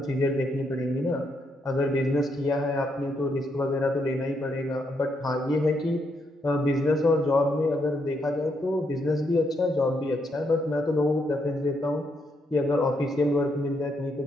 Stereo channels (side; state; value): both; normal; correlation 0.77